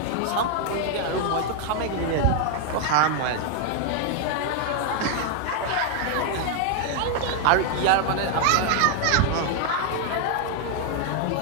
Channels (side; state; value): both; different; correlation 0.00